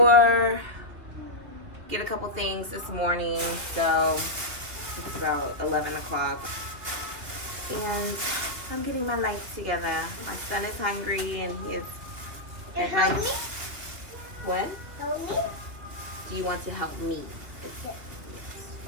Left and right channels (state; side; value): late; left; 2.7 ms